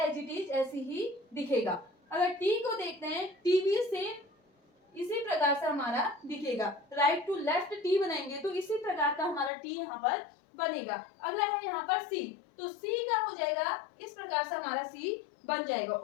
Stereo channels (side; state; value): right; drops out; at 9.5 s